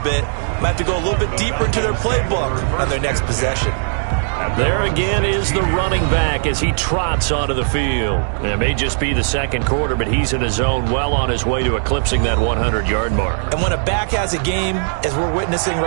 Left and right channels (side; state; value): left; silent; digital silence